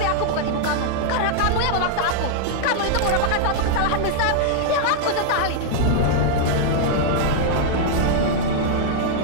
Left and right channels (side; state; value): both; different; correlation -0.01